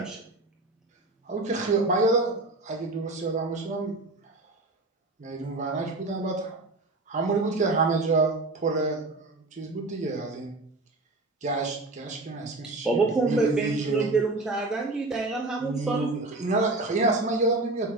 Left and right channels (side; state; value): left; quieter; 3.0 dB